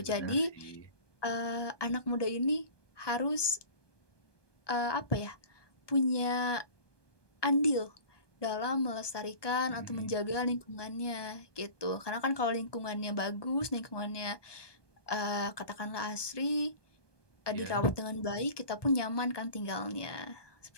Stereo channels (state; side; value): late; right; 1.2 ms